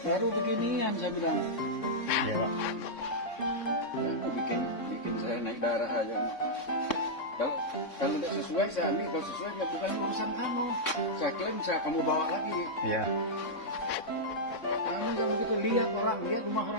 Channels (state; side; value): late; right; 3.6 ms